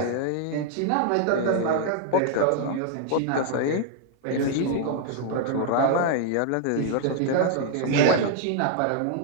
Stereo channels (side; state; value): both; different; correlation 0.00